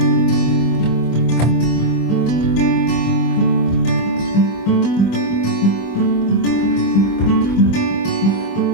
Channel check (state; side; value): late; right; 25 ms